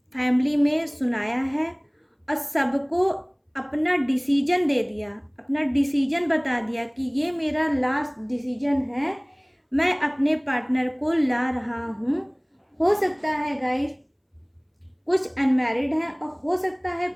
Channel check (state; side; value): identical; both; correlation 1.00